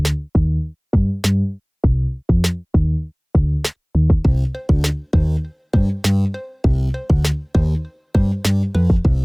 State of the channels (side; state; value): both; identical; correlation 1.00